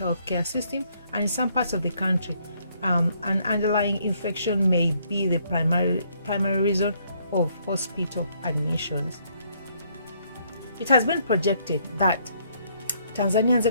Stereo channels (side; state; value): both; inverted; correlation -0.69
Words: healthcare system, and in some parts of the country, an underlying infection may be the primary reason of hospital admissions. It has been projected that Tanzania's